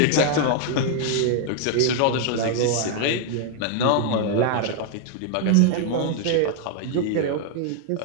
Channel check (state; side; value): different; both; correlation 0.00